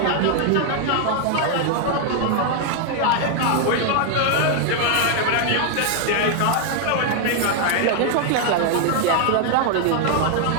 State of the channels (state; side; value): different; both; correlation 0.00